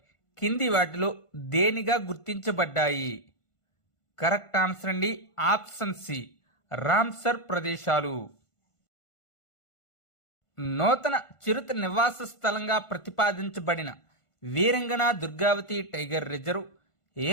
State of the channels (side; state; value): right; late; 1.5 ms